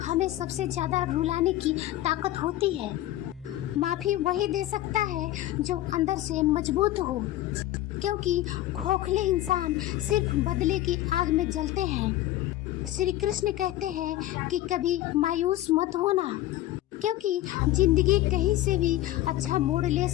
हमें सबसे ज्यादा रुलाने की ताकत होती है। माफी वही दे सकता है जो अंदर से मजबूत हो, क्योंकि खोखले इंसान सिर्फ बदले की आग में जलते हैं। श्री कृष्ण कहते हैं कि कभी मायूस मत होना, क्योंकि जिंदगी कहीं से भी अच्छा मोड़ ले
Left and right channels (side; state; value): right; quieter; 14.8 dB